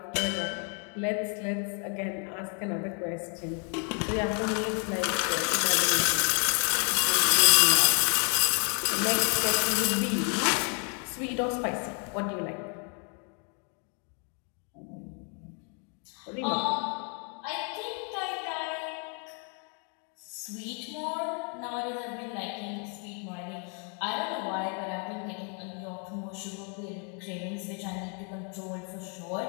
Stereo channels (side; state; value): right; quieter; 39.4 dB